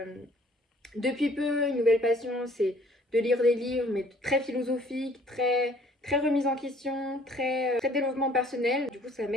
depuis peu une nouvelle passion c'est de lire des livres mais très philosophiques, très remise en question, très développement personnel. Du coup ça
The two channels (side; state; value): both; normal; correlation 0.57